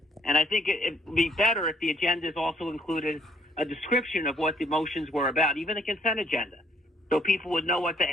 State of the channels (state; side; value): normal; both; correlation 0.65